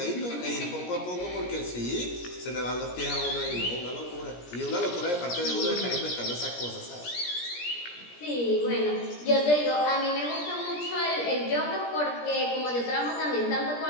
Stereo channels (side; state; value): right; late; 17 ms